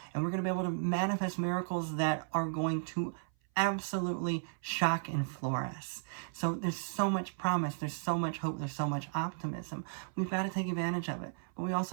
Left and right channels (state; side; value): silent; left; 55 dB below the other